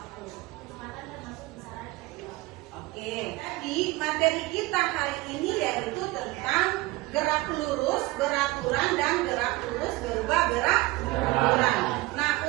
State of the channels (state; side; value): quieter; left; 20.8 dB